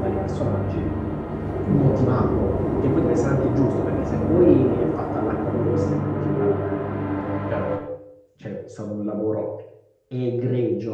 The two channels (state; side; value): identical; both; correlation 1.00